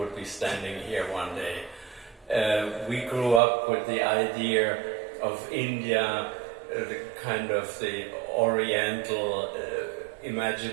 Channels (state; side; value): drops out; left; at 3.4 s